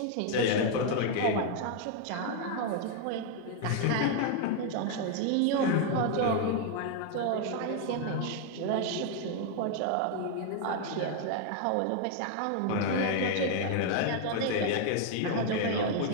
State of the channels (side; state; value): both; different; correlation 0.00